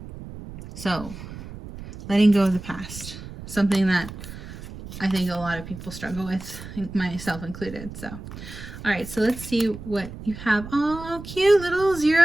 so letting go of the past, something that I think a lot of people struggle with, myself included. So all right, so let's see what you have. Oh, cute little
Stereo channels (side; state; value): right; noise; rumble, 12 dB below the sound